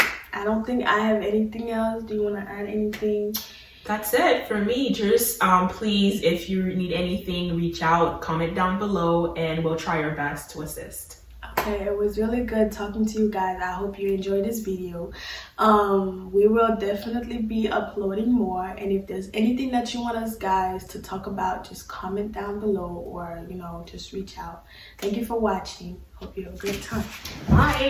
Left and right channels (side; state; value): both; identical; correlation 1.00